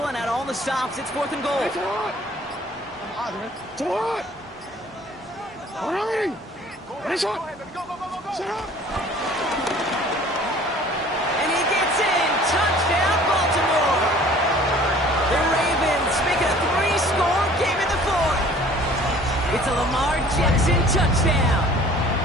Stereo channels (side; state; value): both; normal; correlation 0.51